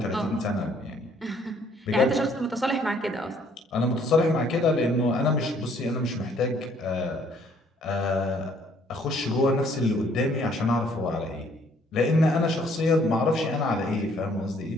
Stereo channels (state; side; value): normal; both; correlation 0.63